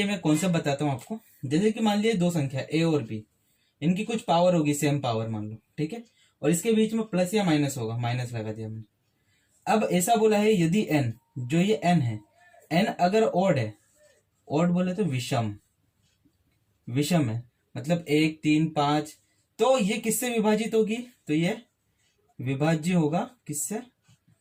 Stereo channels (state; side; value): identical; both; correlation 1.00